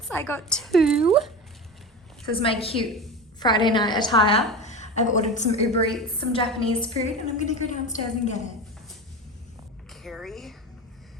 I got 2. This is my cute Friday night attire. I've ordered some Uber Eats, some Japanese food, and I'm gonna go downstairs and get it. Carrie,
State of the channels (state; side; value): normal; both; correlation 0.27